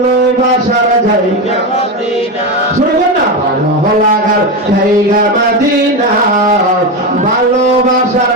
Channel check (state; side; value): normal; both; correlation 0.15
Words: জায়গা মদিনা, শুনবেন না ভালো লাগার জায়গা মদিনা, ভালোবাসার